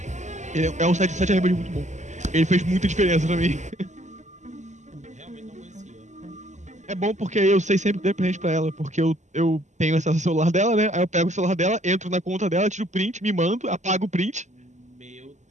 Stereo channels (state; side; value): late; left; 0.34 ms